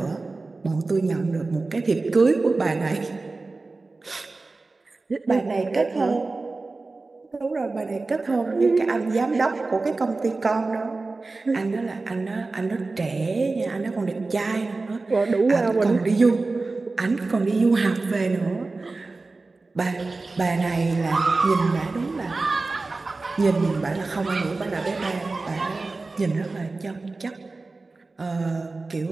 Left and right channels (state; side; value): quieter; left; 3.6 dB